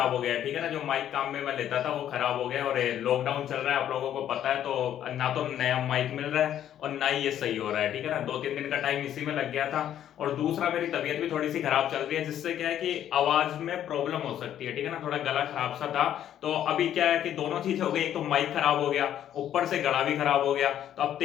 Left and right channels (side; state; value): right; quieter; 10.8 dB